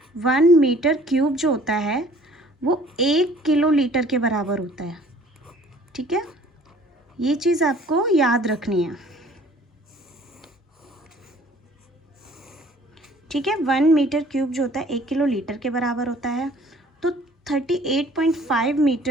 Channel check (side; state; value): both; normal; correlation 0.54